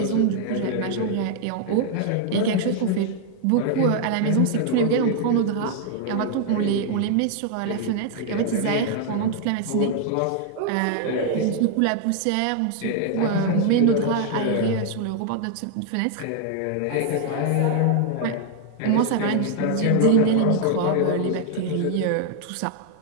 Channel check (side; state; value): both; different; correlation 0.00